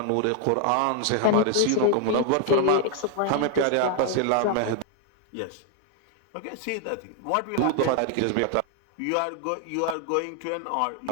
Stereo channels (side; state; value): both; different; correlation 0.00